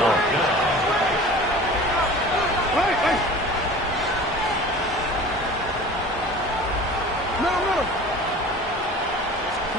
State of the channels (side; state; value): both; normal; correlation 0.40